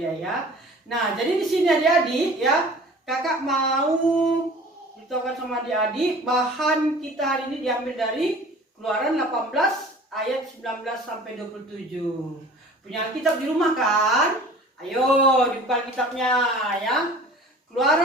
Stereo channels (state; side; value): normal; both; correlation 0.45